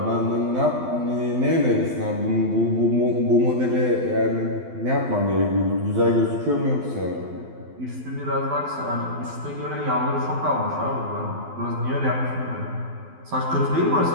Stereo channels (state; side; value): late; left; 12 ms